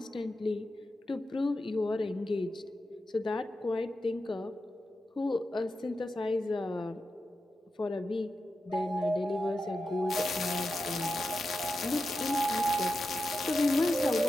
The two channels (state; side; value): normal; both; correlation 0.90